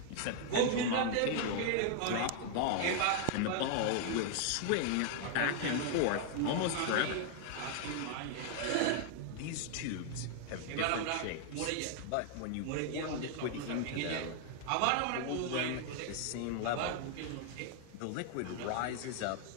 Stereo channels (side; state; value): both; different; correlation 0.00